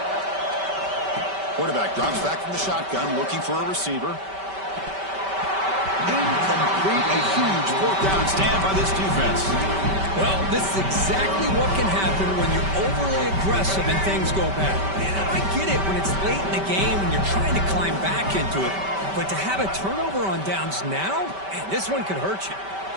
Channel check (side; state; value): left; late; 5.2 ms